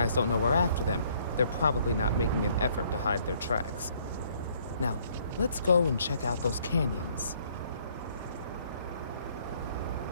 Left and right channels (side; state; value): both; inverted; correlation -0.63